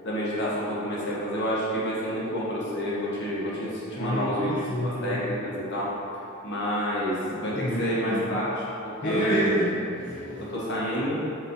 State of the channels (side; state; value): both; normal; correlation 0.34